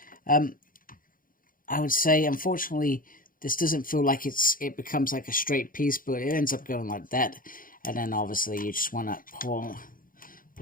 I would say, unfortunately, this doesn't feel like it becomes like a straight piece, but it ends up going like that. And then obviously you just want to pull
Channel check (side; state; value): right; late; 0.40 ms